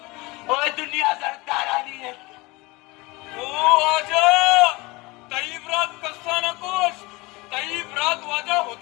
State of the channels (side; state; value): right; quieter; 23.5 dB